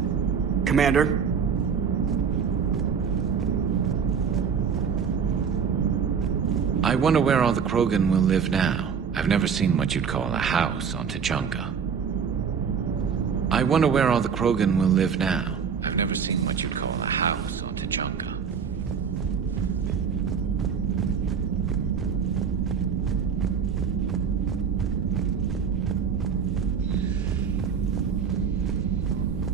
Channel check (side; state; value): left; quieter; 6.7 dB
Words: Commander? I wonder where all the Krogan will live now. I've never seen what you'd call a house on Tuchanka. I wonder where all the Krogan will live now. I've never seen what you'd call a house on Tuchanka.